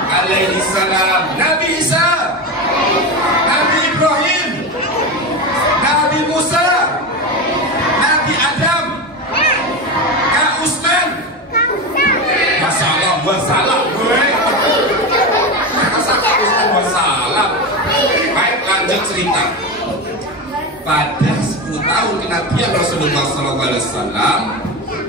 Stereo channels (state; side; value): normal; both; correlation 0.20